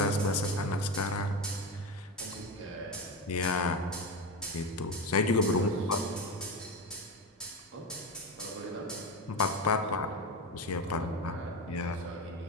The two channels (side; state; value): both; normal; correlation 0.19